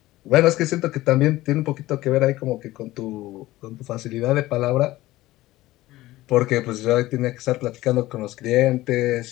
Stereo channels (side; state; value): right; quieter; 17.2 dB